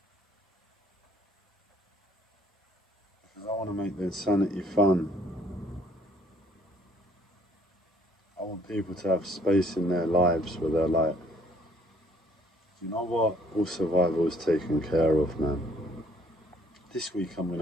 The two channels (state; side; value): normal; both; correlation 0.63